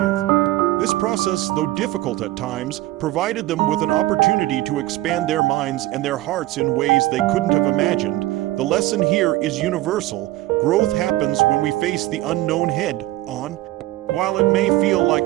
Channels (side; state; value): left; quieter; 16.8 dB